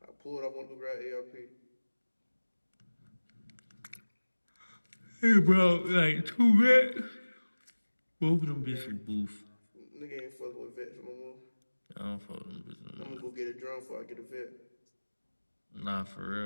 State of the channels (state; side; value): inverted; both; correlation -1.00